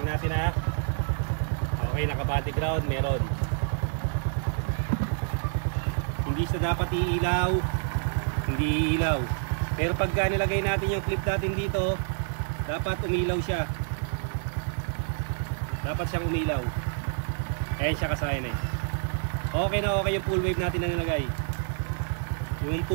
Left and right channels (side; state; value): left; silent; digital silence